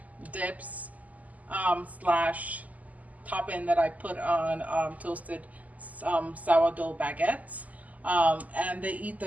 dips slash topping that I put on toasted sourdough baguettes. And they eat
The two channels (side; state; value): left; late; 0.076 ms